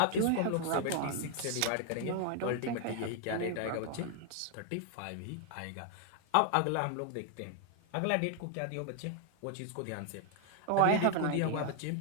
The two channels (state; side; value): different; both; correlation 0.00